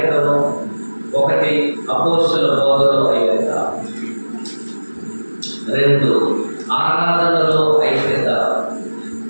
ఒకటి అపోస్తల బోధలో ఐక్యత, 2 ఆరాధనలో ఐక్యత,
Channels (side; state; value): both; inverted; correlation -1.00